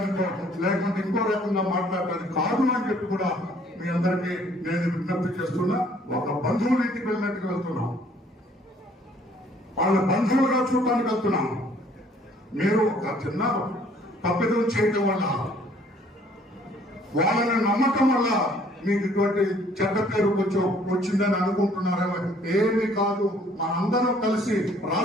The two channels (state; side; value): normal; both; correlation 0.60